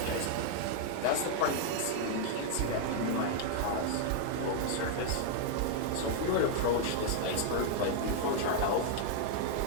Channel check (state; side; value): different; both; correlation 0.00